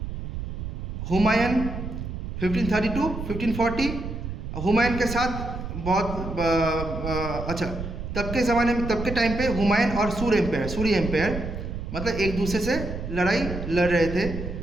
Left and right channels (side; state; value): right; noise; rumble, 6 dB below the sound